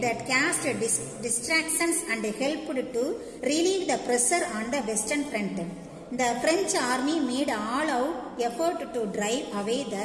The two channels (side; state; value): both; identical; correlation 1.00